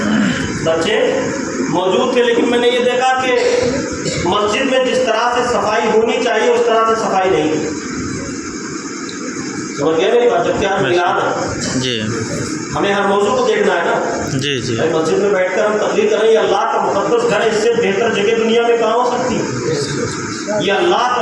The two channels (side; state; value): both; identical; correlation 1.00